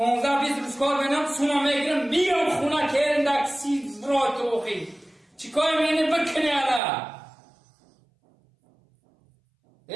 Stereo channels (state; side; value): drops out; left; at 6.8 s